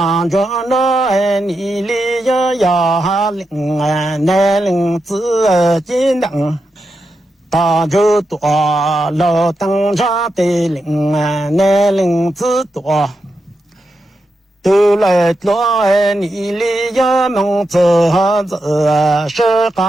着那你里要领那领子金灯大就多老灯茶的领那领子多都来多你里要梦走走是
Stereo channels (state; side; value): normal; both; correlation 0.87